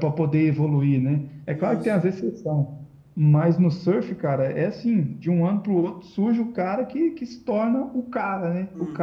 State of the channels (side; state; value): both; identical; correlation 1.00